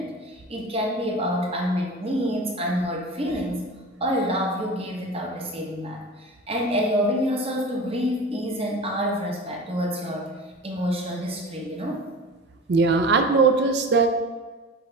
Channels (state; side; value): normal; both; correlation 0.35